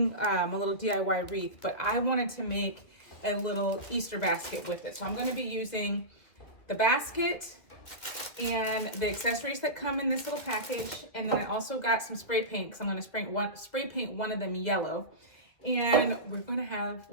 a little DIY wreath, but I wanted to make a little Easter basket with it. So I'm going to be using the basket and the accessories that come in this little package, and then I also got some spray paint because I'm going to spray paint one of them yellow. And we're going to have,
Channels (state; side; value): late; right; 2.2 ms